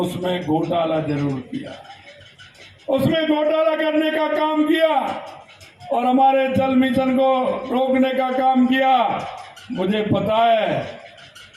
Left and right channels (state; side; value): identical; both; correlation 1.00